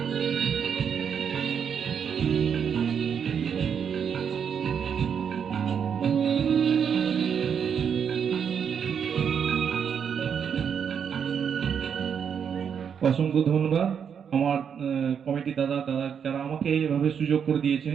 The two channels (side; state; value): left; quieter; 7.4 dB